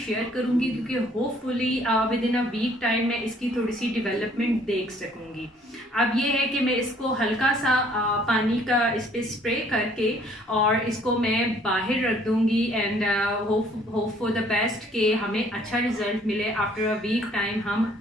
करूंगी, क्योंकि hopefully within a week time मैं इसकी थोड़ी सी डेवलपमेंट देख सकूंगी। अब ये है कि मैं इसको हल्का सा पानी का इस पे स्प्रे करके और इसको मैं बाहर रख दूंगी and hope for the best कि हमें अच्छा रिजल्ट मिले। आफ्टर अ वीक टाइम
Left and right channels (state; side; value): normal; both; correlation 0.60